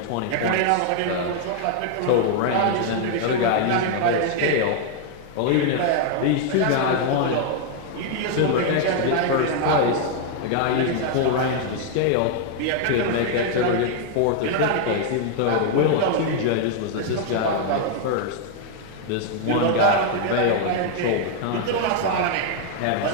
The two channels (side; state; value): both; different; correlation 0.00